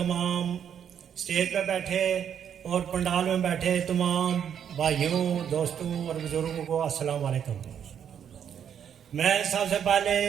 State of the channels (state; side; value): quieter; left; 8.6 dB